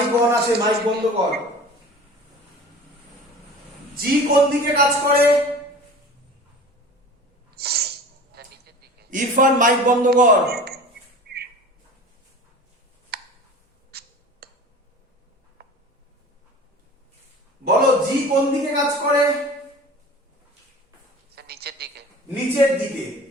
অন আছে, মাইক বন্ধ কর। জি কোন দিকে কাজ করে? ইরফান মাইক বন্ধ কর। বলো জি কোন দিকে কাজ করে? স্যার নিচের দিকে। নিচের দিকে।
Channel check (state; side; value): normal; both; correlation 0.39